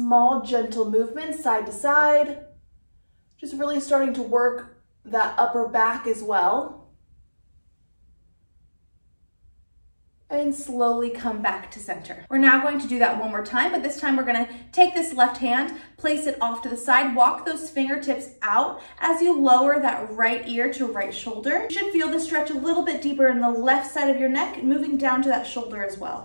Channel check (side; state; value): both; inverted; correlation -1.00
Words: gentle movements side to side, just really starting to work that upper back as well. And slowly come back to center. We're now going to do that one more time, but this time we're gonna take this left hand, place it off to the side, walk those fingertips out as you lower that right ear to right shoulder. You should feel the stretch a little bit deeper in the left side of your neck, moving down to that shoulder as